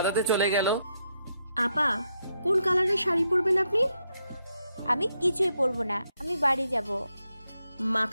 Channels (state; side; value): inverted; both; correlation -0.80